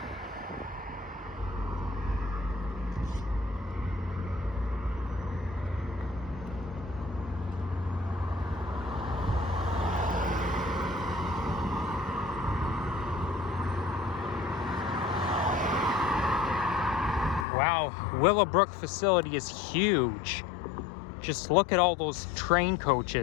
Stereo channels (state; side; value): drops out; right; at 17.4 s